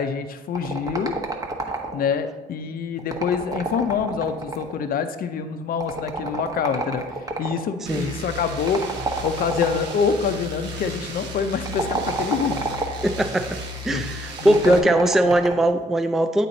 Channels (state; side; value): normal; both; correlation 0.58